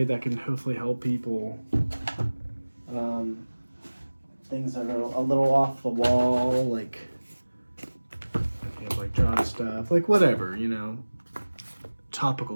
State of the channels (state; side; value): inverted; both; correlation -1.00